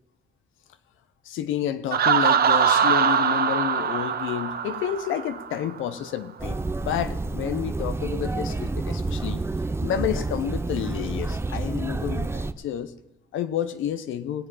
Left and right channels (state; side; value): normal; both; correlation 0.04